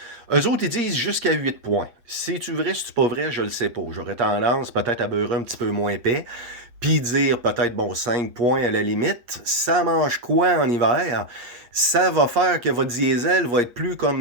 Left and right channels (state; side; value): late; left; 8.4 ms